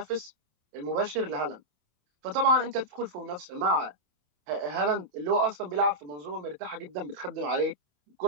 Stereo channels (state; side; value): late; left; 27 ms